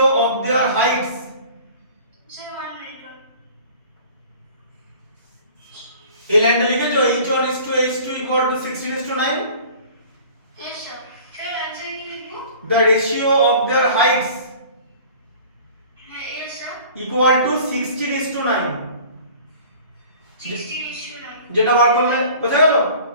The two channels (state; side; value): inverted; both; correlation -0.46